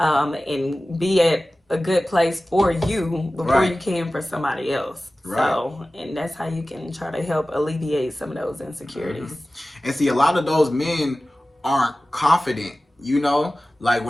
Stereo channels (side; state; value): both; normal; correlation 0.96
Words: be at a good place for you before you can for somebody else. Right. So, and that's how you can try to help alleviate some of those insecurities. And see, a lot of those men aren't confident, you know, like